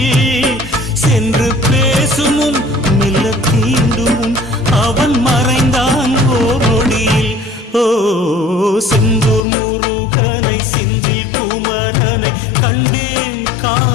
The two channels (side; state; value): right; drops out; at 9.4 s